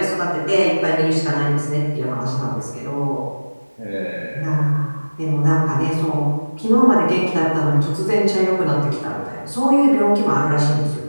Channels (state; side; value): inverted; both; correlation -1.00